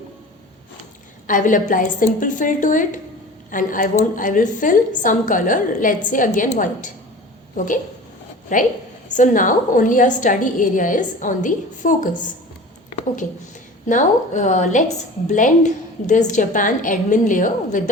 I will apply simple fill to it, and I will fill some color, let's say again white. Okay, right? So now only our study area is on the focus. Okay, now let's blend this Japan admin layer with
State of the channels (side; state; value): both; normal; correlation 0.38